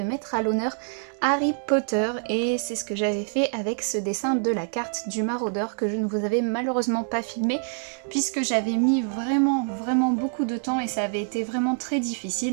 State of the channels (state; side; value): silent; left; 61 dB below the other